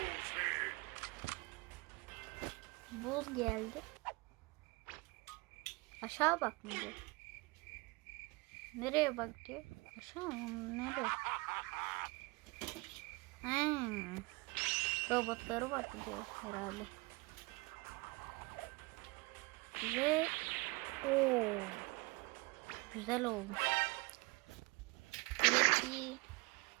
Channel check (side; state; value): left; quieter; 25.7 dB